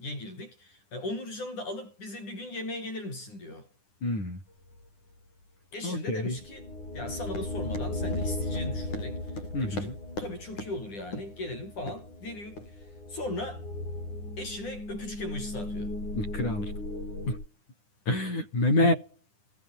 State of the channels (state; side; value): late; right; 9.9 ms